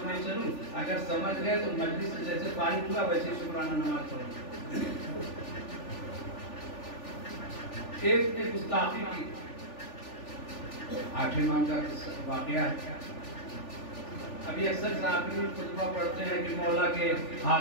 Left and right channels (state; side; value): late; right; 3.4 ms